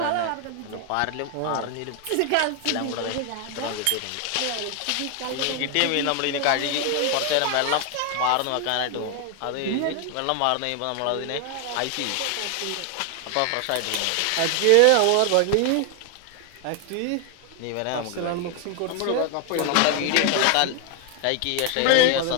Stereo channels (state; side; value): different; both; correlation 0.00